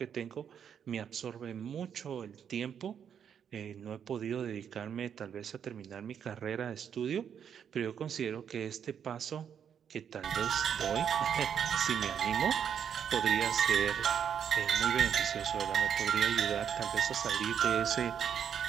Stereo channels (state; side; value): quieter; left; 8.1 dB